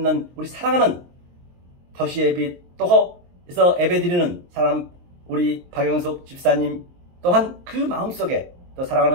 우리 사랑하는 도시의 빛 또에서 예배드리는 사람 우리 박영숙 집사님 또한 그 마음속에 또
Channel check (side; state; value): left; late; 23 ms